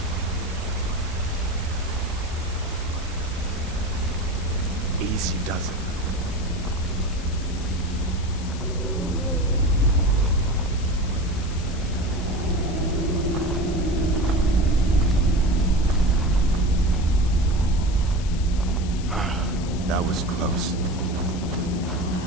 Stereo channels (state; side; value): noise; left; hiss, 16 dB below the sound